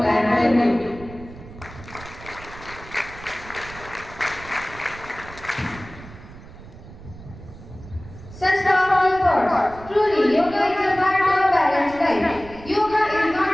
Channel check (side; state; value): right; noise; rumble, 17 dB below the sound